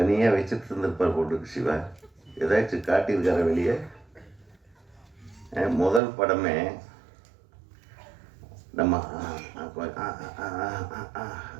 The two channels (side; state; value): left; drops out; at 6.0 s